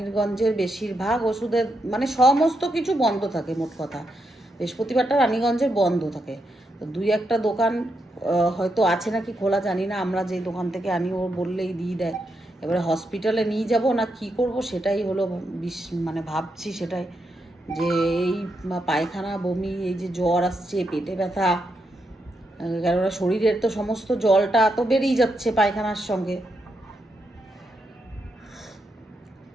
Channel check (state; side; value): normal; both; correlation 0.82